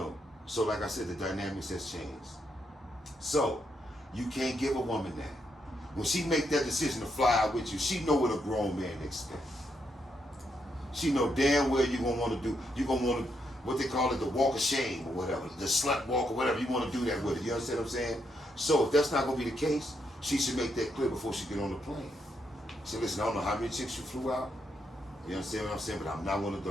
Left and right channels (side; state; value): both; normal; correlation 0.79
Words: so like I said, the dynamics has changed. So, you can't give a woman that. When she make that decision to fly out with you, she know what a grown man expects. She know damn well you're gonna want to do, what they call it, the walk of shame or whatever, the slut walk or whatever, you want to do that with it. You understand what I'm saying? So if that's not gonna be the case, she should make that clear before she get on the plane. She listen, I don't know how many chicks you flew out. You understand what I'm saying? But I'm not one of